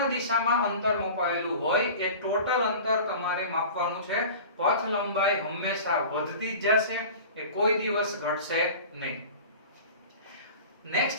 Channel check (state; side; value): inverted; both; correlation -0.38